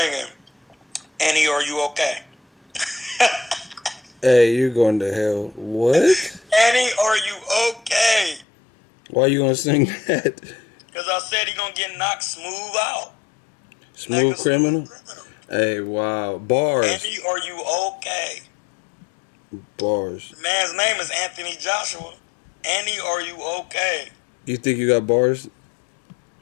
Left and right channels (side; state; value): right; drops out; at 8.5 s